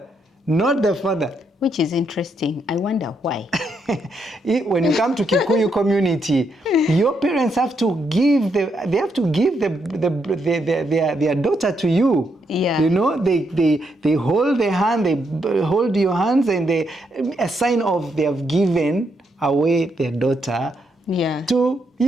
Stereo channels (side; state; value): both; normal; correlation 0.78